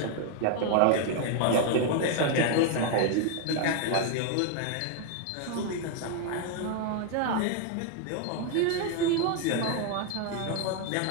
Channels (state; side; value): different; both; correlation 0.00